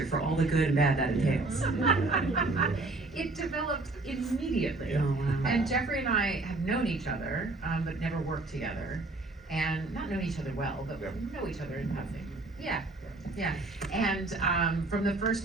for all the good and bad that entails? It developed immediately. Oh, wow. And Jeffrey and I have known each other, but never worked together. And not known each other well, but know each other in passing. Yeah. And from the first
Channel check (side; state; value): left; quieter; 3.2 dB